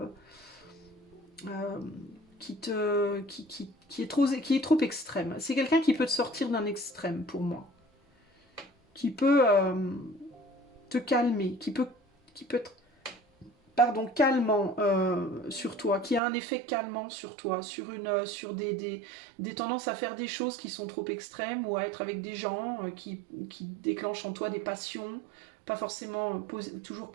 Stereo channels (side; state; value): left; drops out; at 16.2 s